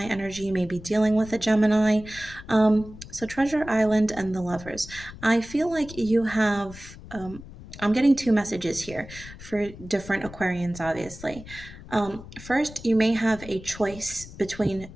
energy. You may be dealing with a Gemini. So Treasure Island and the Lovers. I feel like you have, I'm getting two messages here for different Aquarians, obviously. First, you may have a choice between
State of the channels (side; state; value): left; noise; rumble, 16 dB below the sound